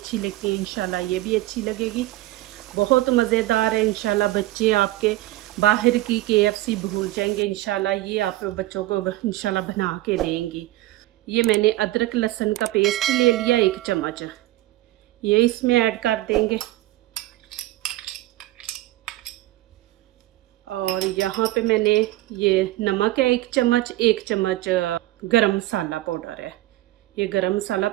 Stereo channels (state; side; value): quieter; left; 16.9 dB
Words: लगती है इंशाल्लाह ये भी अच्छी लगेगी। बहुत मज़ेदार है। इंशाल्लाह बच्चे आपके बाहर की KFC भूल जाएंगे। इंशाल्लाह ये आप बच्चों को इंशाल्लाह बना के देंगी। ये मैंने अदरक लहसुन का पेस्ट ले लिया 1 चम्मच, ये इसमें ऐड कर देंगे। और यहाँ पे मैंने ये नमक है 1 चम्मच, 1 चम्मच गरम मसाला पाउडर है, ये गरम मसाला